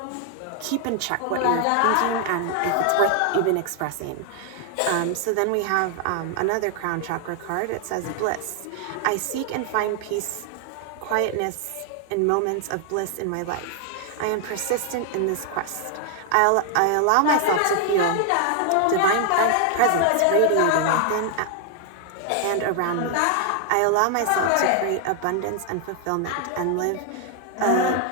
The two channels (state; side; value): different; both; correlation 0.00